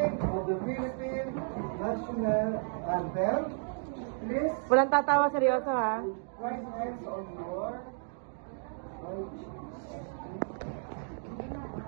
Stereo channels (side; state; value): left; silent; 56 dB below the other